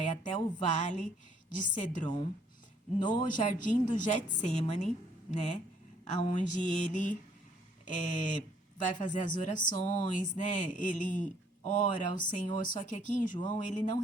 até o vale de Cedron, no jardim do Getsêmani, né? Onde ele vai fazer as orações, né? Ele ora ao Senhor, só que aqui em João ele não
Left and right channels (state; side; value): normal; both; correlation 0.64